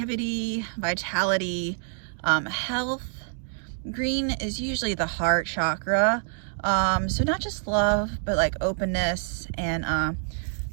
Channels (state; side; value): silent; left; digital silence